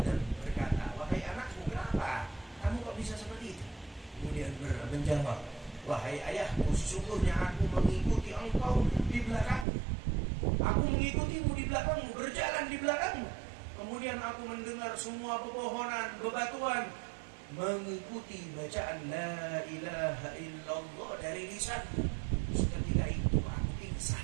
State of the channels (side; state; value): left; drops out; at 9.7 s